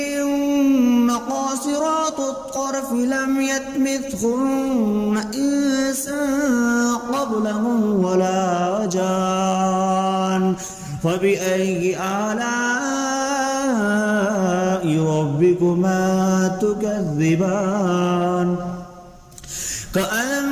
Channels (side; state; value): both; identical; correlation 1.00